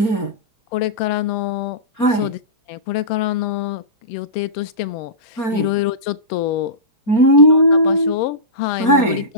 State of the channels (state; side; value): late; right; 4.3 ms